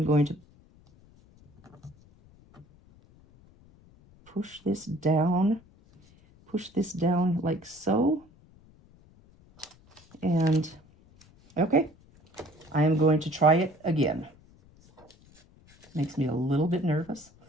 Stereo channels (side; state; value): left; noise; rumble, 27 dB below the sound